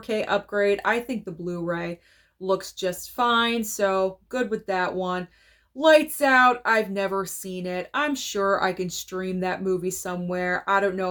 upgrade. I think the Blu-ray looks just fine, so good with that one. Lights Out, I've never seen it. I'm sure I can stream that movie somewhere. I don't know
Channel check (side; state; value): both; identical; correlation 1.00